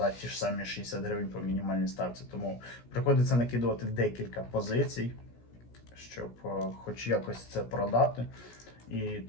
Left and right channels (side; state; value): right; late; 17 ms